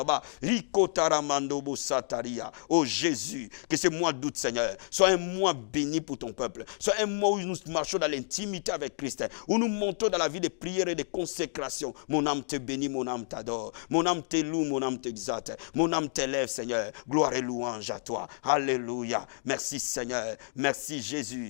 Rikotaramando sataria. Oh Jésus, que ce mois d'août, Seigneur, soit un mois béni pour ton peuple. Soit un mois où nous marchons dans l'intimité avec Christ. Où nous montons dans la vie de prière et de consécration. Mon âme te bénit, mon âme t'adore. Mon âme te loue, mon âme t'exalte. Mon âme t'élève, Seigneur. Gloire et louange à toi. Alléluia. Merci, Seigneur. Merci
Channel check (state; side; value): silent; right; digital silence